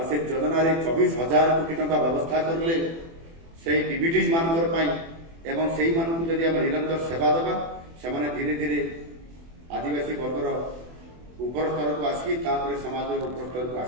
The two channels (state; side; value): late; left; 24 ms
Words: ସେ ଯୋଜନାରେ 24,000 କୋଟି ଟଙ୍କା ବ୍ୟବସ୍ଥା କରିଲେ ସେଇ PBDs ମାନଙ୍କର ପାଇଁ। ଏବଂ ସେଇମାନଙ୍କୁ ଯଦି ଆମେ ନିରନ୍ତର ସେବା ଦେବା, ସେମାନେ ଧୀରେ ଧୀରେ ଆଦିବାସୀ ବର୍ଗର ଉପର ସ୍ତରକୁ ଆସିକି ତାପରେ ସମାଜର ଉପର ସ୍ତରକୁ